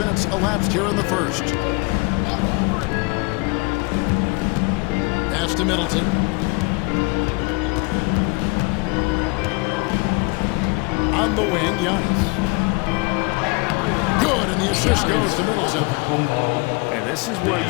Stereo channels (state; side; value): quieter; right; 28.7 dB